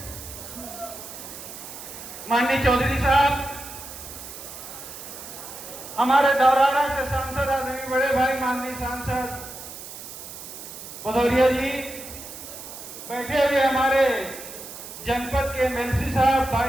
माननीय चौधरी साहब, हमारे दौराना से सांसद आदरणीय बड़े भाई माननीय सांसद भदौरिया जी, बैठे हुए हमारे जनपद के एमएलसी साहब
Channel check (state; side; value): noise; right; hiss, 12 dB below the sound